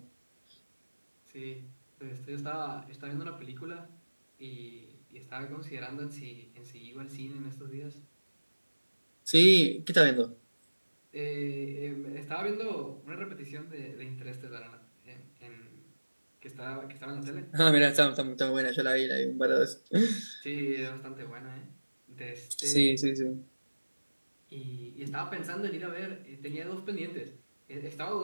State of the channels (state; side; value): inverted; both; correlation -1.00